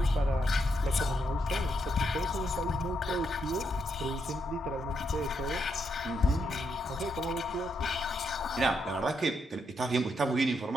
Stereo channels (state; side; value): normal; both; correlation 0.79